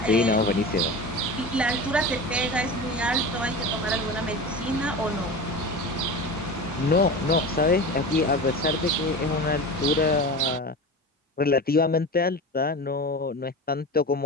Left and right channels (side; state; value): both; normal; correlation 0.30